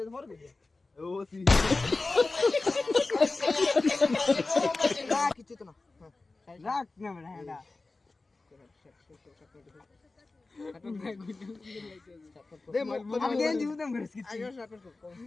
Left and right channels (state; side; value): quieter; right; 3.5 dB